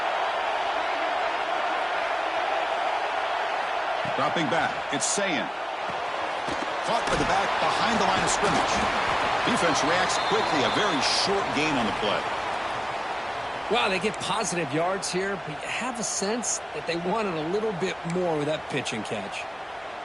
Dropping back, it's Sayin. Caught by the back behind the line of scrimmage. Defense reacts quickly, a very short gain on the play. Wow, they get positive yards here, but you have a sense that they wanted a little bit more with that pitch and catch.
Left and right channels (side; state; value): both; identical; correlation 1.00